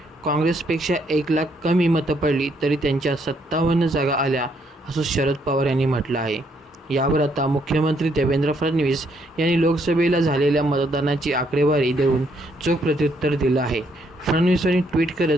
काँग्रेसपेक्षा 1 लाख कमी मतं पडली तरी त्यांच्या 57 जागा आल्या असं शरद पवार यांनी म्हटलं आहे. यावर आता मुख्यमंत्री देवेंद्र फडणवीस यांनी लोकसभेला झालेल्या मतदानाची आकडेवारी देऊन चोख प्रत्युत्तर दिलं आहे. फडणवीस यांनी ट्विट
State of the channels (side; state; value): both; normal; correlation 0.72